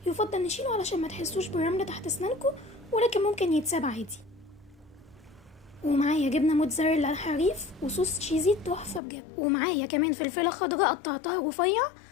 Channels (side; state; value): right; drops out; at 9.0 s